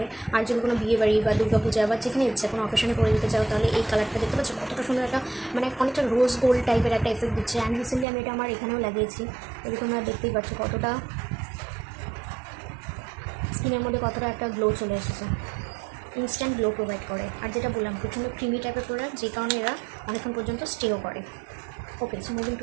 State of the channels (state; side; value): drops out; left; at 8.1 s